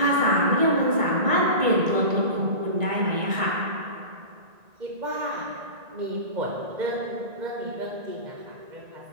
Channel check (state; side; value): late; left; 1.9 ms